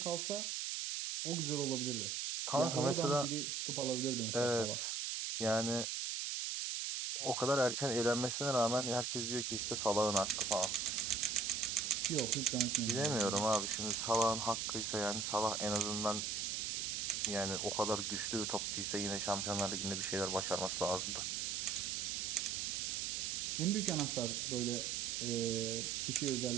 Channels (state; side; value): noise; right; hiss, 1 dB below the sound